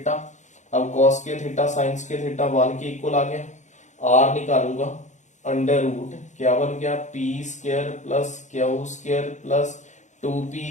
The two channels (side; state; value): right; late; 0.35 ms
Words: अब cos square theta sine square theta 1 के इक्वल आ गया, R निकालूंगा, अंडर रूट क्या बन गया, P square plus Q square plus